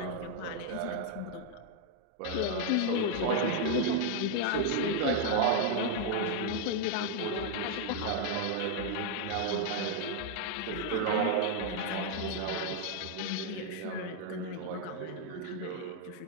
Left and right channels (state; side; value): different; both; correlation 0.00